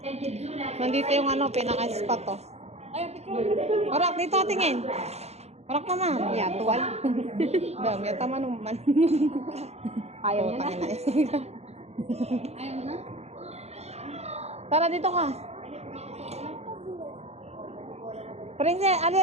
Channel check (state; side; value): late; left; 0.31 ms